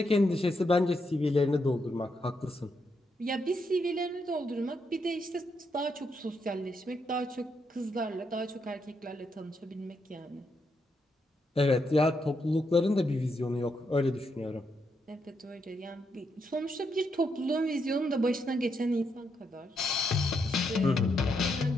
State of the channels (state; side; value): normal; both; correlation 0.80